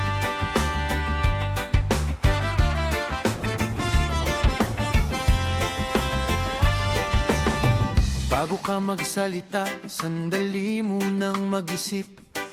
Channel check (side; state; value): both; identical; correlation 1.00